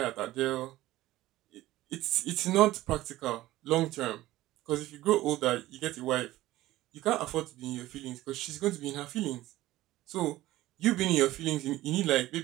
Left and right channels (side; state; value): left; quieter; 16.3 dB